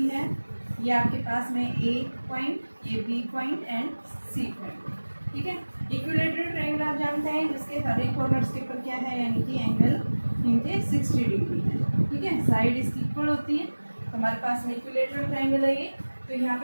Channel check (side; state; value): both; inverted; correlation -1.00